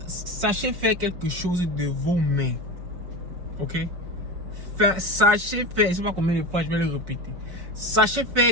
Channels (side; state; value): left; late; 5.5 ms